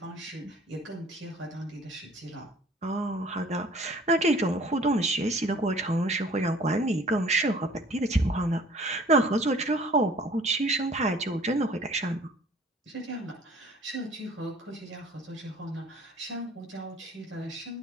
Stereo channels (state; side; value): normal; both; correlation 0.52